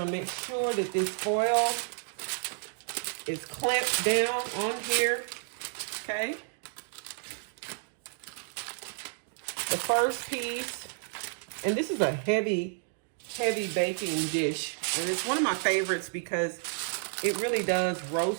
make sure that this foil is clamped down on here, okay? The first piece, and this is a heavy baking dish. And it's one of my favorites because it really does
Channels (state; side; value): silent; left; digital silence